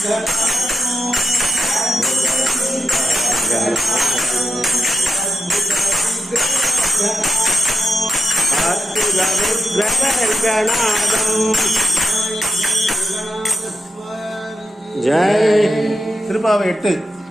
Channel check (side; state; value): both; normal; correlation 0.88